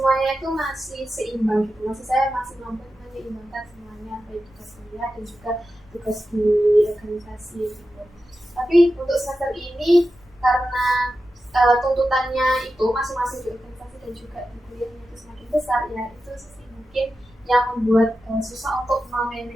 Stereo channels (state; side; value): normal; both; correlation 0.91